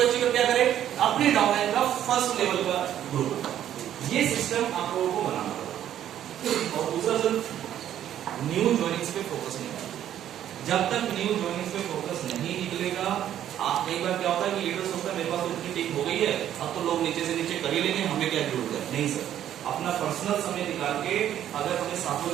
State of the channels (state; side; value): quieter; left; 11.0 dB